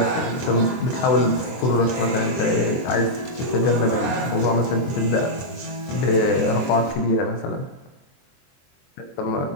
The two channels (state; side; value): late; right; 23 ms